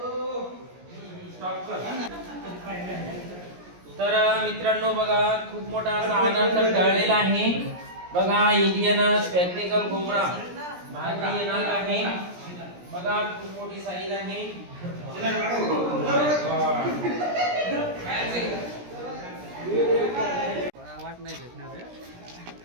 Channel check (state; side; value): late; left; 17 ms